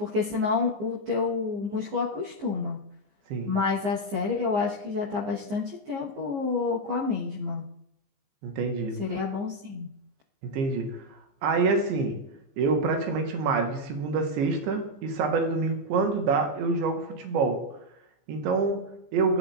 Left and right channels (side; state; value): left; late; 15 ms